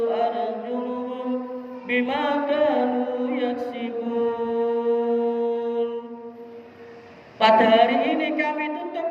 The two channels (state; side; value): identical; both; correlation 1.00